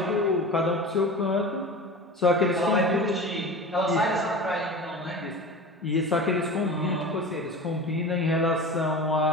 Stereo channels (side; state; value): both; normal; correlation 0.33